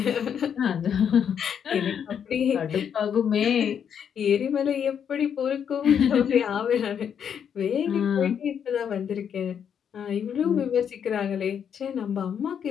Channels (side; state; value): right; quieter; 8.1 dB